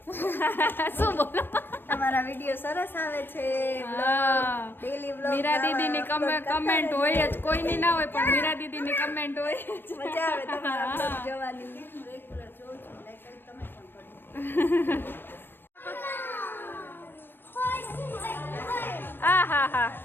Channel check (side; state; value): right; late; 0.097 ms